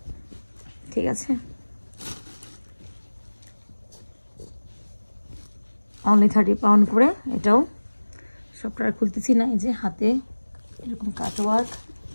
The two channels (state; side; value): inverted; both; correlation -1.00